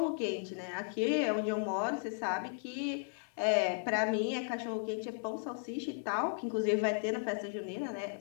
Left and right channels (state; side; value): silent; right; 54 dB below the other